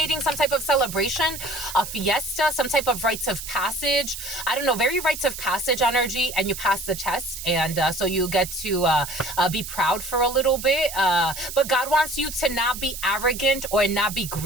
some type of celebration, a fiesta, some type of rites of passage. I don't know, very rites of passage energy, and you pass the test, and so you get to be proud for a little bit. But God wants you to not be arrogant or not be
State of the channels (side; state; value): right; noise; hiss, 9 dB below the sound